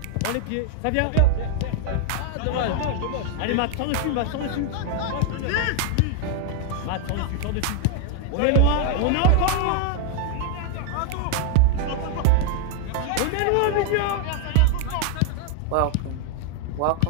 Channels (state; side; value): different; both; correlation 0.00